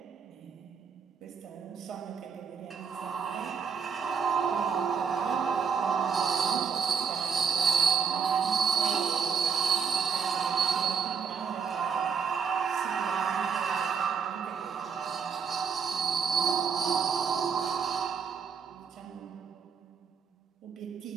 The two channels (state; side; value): quieter; left; 6.4 dB